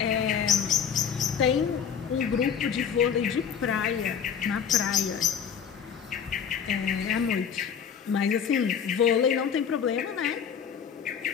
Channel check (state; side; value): quieter; right; 7.6 dB